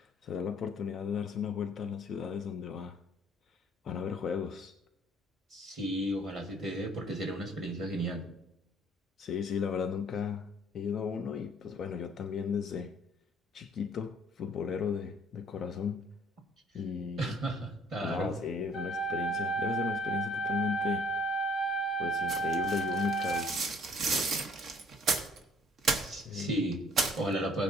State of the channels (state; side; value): normal; both; correlation 0.58